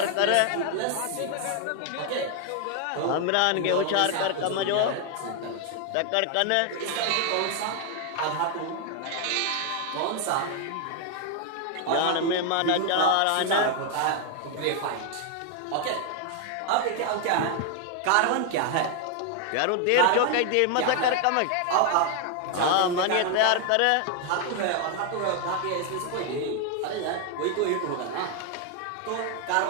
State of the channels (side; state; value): both; different; correlation 0.00